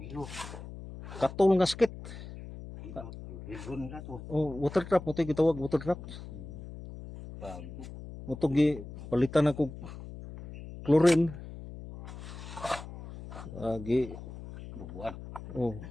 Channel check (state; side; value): noise; left; hum, 12 dB below the sound